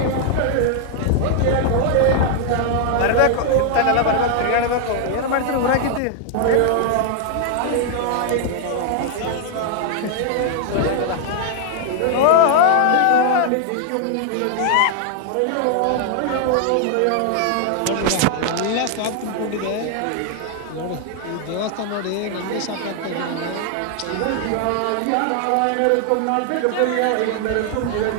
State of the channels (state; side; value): different; both; correlation 0.00